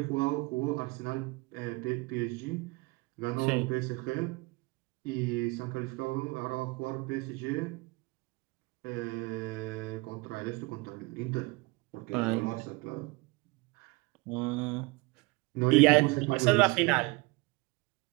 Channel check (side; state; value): left; quieter; 24.8 dB